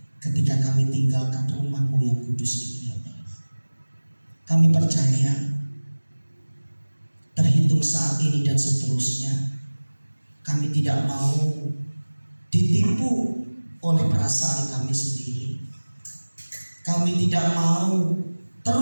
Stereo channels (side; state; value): both; inverted; correlation -1.00